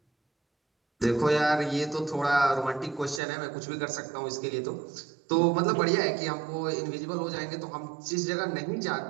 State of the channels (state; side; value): drops out; left; at 3.2 s